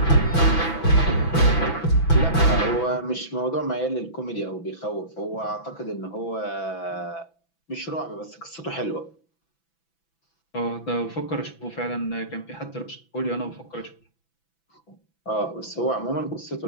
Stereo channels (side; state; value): right; late; 6.0 ms